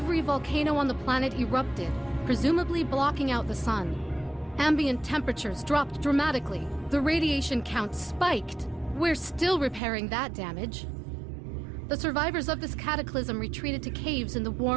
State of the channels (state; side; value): drops out; left; at 9.8 s